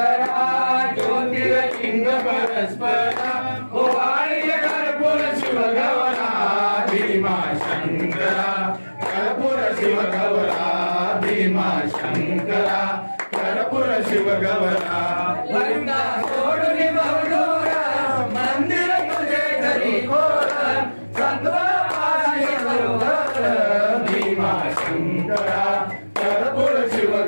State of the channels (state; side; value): inverted; both; correlation -1.00